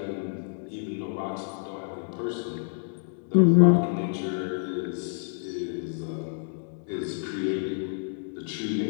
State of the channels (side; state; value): right; silent; digital silence